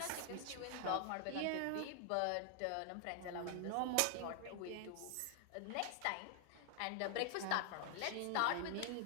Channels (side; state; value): both; different; correlation 0.00